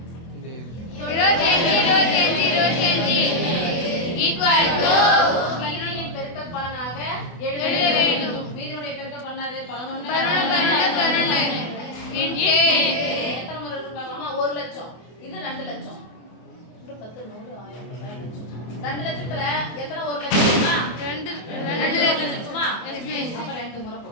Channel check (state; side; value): late; right; 24 ms